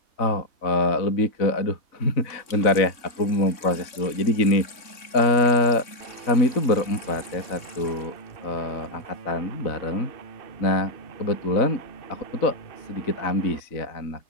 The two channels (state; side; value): late; right; 3.5 ms